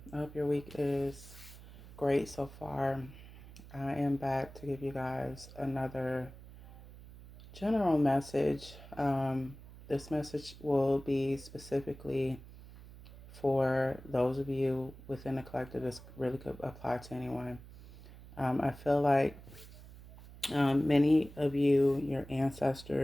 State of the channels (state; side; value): noise; right; hum, 17 dB below the sound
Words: hope your week is great so far. I am back to give you guys another general message. This message will be specifically for those of you within the collective. This really could apply to anyone. I feel like many of you, your